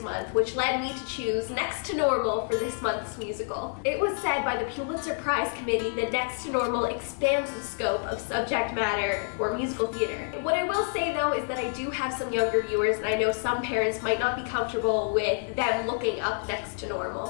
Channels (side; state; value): right; silent; 55 dB below the other